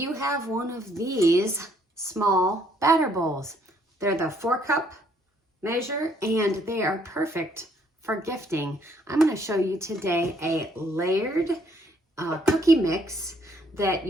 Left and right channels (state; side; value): normal; both; correlation 0.67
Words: have one of these small batter bowls. They're the 4-cup measure and they are perfect for gifting. I'm going to show you today a layered cookie mix that